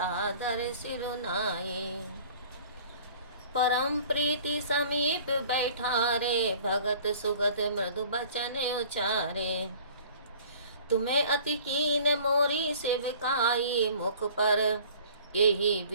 सिरुनाए। परम प्रीति समीप बैठारे, भगत सुगत मृदु बचन उचारे। तुम्हें अति कीन मोरी सेविकाई, मुख पर यही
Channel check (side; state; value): both; inverted; correlation -0.49